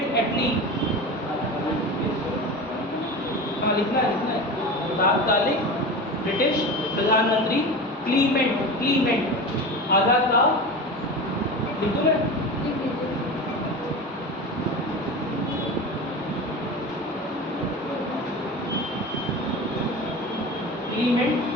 एटली, हाँ लिखना है, तात्कालिक ब्रिटिश प्रधानमंत्री क्लीमेंट आधा का लिख दूं मैं? लिख दीजिए। क्लीमेंट,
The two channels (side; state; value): both; normal; correlation 0.29